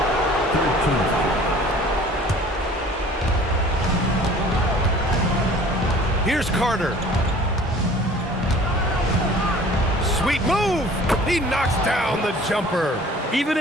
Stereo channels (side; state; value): both; normal; correlation 0.49